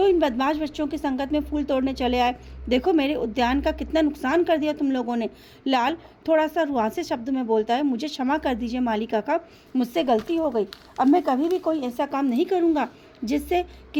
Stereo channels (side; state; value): both; identical; correlation 1.00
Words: इन बदमाश बच्चों की संगत में फूल तोड़ने चले आए? देखो मेरे उद्यान का कितना नुकसान कर दिया तुम लोगों ने। लाल थोड़ा सा रुआंसे शब्द में बोलता है, मुझे क्षमा कर दीजिए माली काका, मुझसे गलती हो गई, अब मैं कभी भी कोई ऐसा काम नहीं करूँगा जिससे